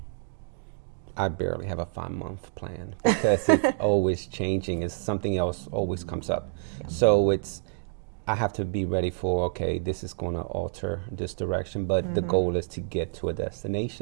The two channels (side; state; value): left; silent; digital silence